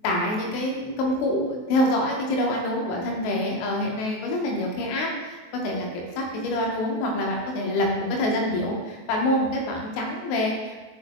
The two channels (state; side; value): late; right; 23 ms